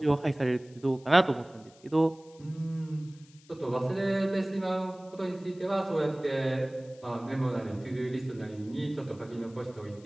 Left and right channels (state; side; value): noise; left; hiss, 27 dB below the sound